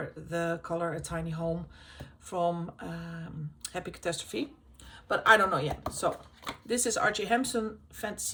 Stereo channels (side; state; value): both; identical; correlation 1.00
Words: the Color a Tiny Home from Happy Catastrophe, but I don't know yet. So this is R.J. Hampson,